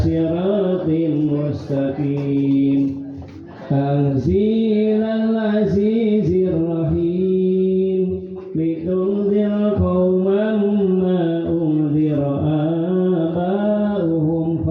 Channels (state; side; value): identical; both; correlation 1.00